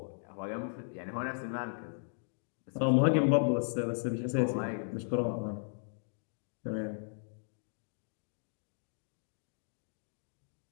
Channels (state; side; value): silent; right; digital silence